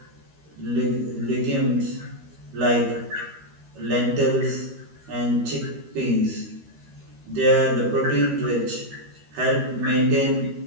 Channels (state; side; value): late; left; 13 ms